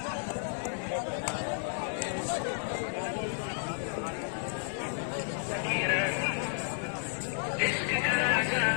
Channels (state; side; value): silent; right; digital silence